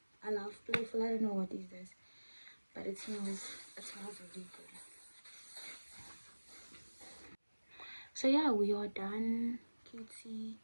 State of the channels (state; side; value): inverted; both; correlation -1.00